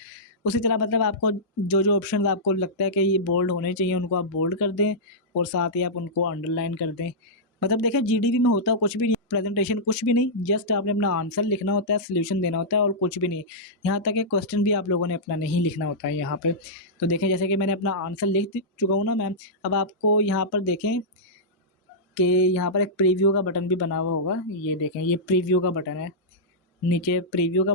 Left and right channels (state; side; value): normal; both; correlation -0.13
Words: उसी तरह मतलब आपको जो जो ऑप्शन आपको लगता है कि ये बोल्ड होने चाहिए उनको आप बोल्ड कर दें, और साथ ही आप उनको अंडरलाइन कर दें। मतलब देखें जीडीबी में होता कुछ भी नहीं, प्रेजेंटेशन कुछ भी नहीं, जस्ट आपने अपना आंसर लिखना होता है, सोल्यूशन देना होता है, और कुछ भी नहीं। यहाँ तक कि क्वेश्चन भी आप लोगों ने अपना नहीं लिखना होता है यहाँ पे। तो देखें जैसे कि मैंने अपना आंसर लिख चुका हूँ ना मैम। अब आपको यहाँ पर देखें कि यहाँ पर एक प्रीव्यू का बटन भी बना हुआ होगा। ये देखें, ये प्रीव्यू का बटन है। नीचे प्रीव्यू का